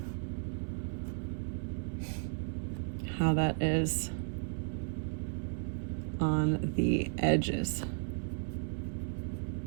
how that is on the edges.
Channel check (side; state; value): left; silent; 55 dB below the other